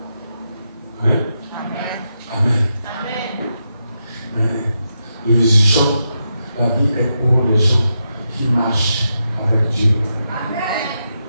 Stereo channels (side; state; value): both; inverted; correlation -0.85